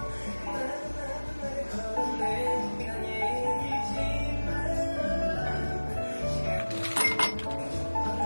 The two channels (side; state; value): both; inverted; correlation -1.00